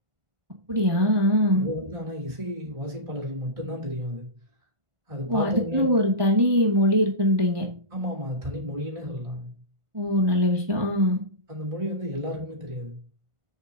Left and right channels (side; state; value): left; late; 1.4 ms